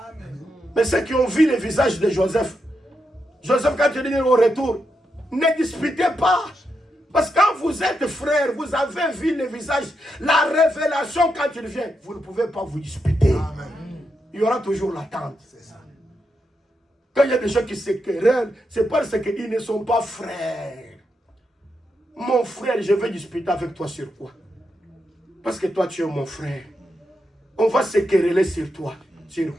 Mais ceux qui ont vu le visage de Joseph, Joseph, quand il dit au retour, ne disputez pas. Parce que quand vous êtes frères, vous avez vu le visage, la révélation quand il vient, vous ne pouvez pas vous disputer. Il y aura toujours l'attente. Quand il y a des gens qui se querellent, c'est parce qu'ils ne sont pas frères. Mon frère, je vais disputer avec toi sur quoi? Parce que toi, tu es mon frère. On va se quereller sur toi. Sur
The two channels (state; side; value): normal; both; correlation 0.84